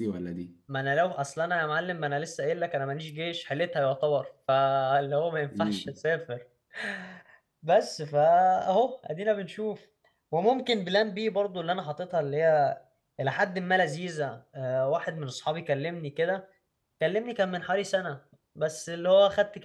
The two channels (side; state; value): both; identical; correlation 1.00